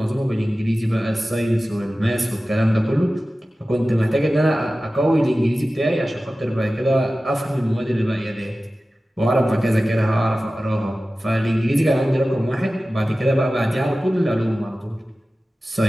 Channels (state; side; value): normal; both; correlation 0.96